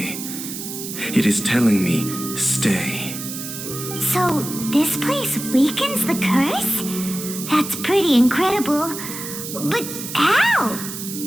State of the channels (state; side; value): noise; right; hiss, 8 dB below the sound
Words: It is telling me, stay. So, this place weakens the curse? That's pretty incredible. But how?